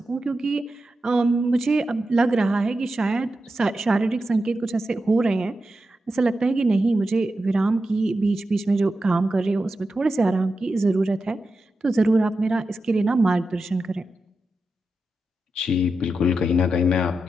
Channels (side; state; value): both; normal; correlation 0.90